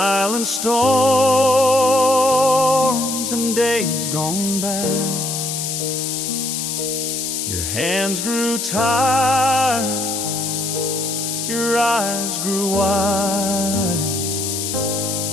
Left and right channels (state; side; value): noise; left; hiss, 3 dB below the sound